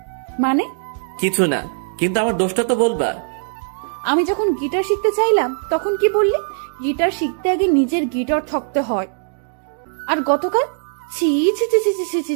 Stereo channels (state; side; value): silent; left; digital silence